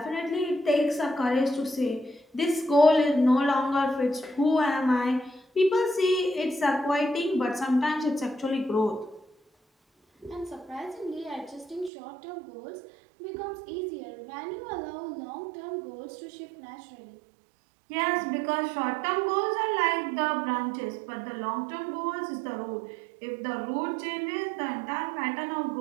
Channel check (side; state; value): left; drops out; at 11.9 s